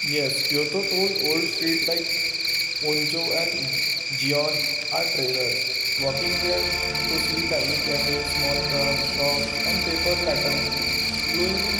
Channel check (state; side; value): identical; both; correlation 1.00